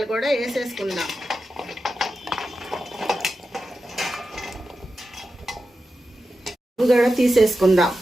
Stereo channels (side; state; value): both; normal; correlation 0.91